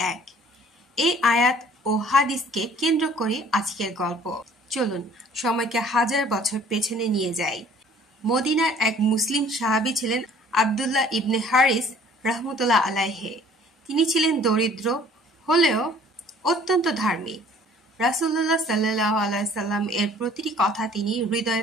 এই আয়াত ও হাদিসকে কেন্দ্র করে আজকের গল্প। চলুন সময়কে হাজার বছর পেছনে নিয়ে যাই। মদিনার এক মুসলিম সাহাবী ছিলেন আব্দুল্লাহ ইবনে হারিস রাহমাতুল্লাহ আলাইহি। তিনি ছিলেন দরিদ্র হলেও অত্যন্ত ধার্মিক। রাসূলুল্লাহ সাল্লাল্লাহু আলাইহি সাল্লাম এর প্রতিটি কথা তিনি হৃদয়ে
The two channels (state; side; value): normal; both; correlation 0.54